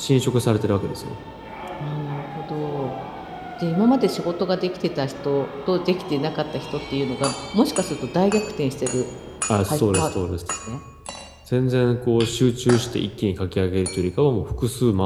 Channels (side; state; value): both; identical; correlation 1.00